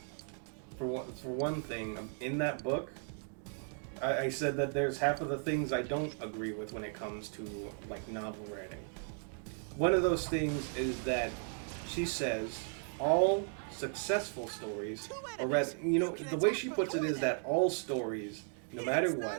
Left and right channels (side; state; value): left; silent; 54 dB below the other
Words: For one thing, in that book, I said that there's half of the things I don't agree with when it comes to novel writing. One of those things is that she says all successful stories, or rather, the way she puts it is that all stories, no matter